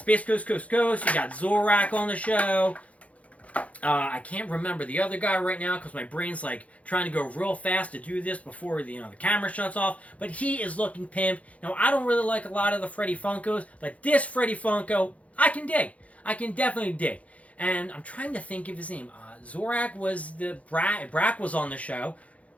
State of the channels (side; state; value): right; late; 0.066 ms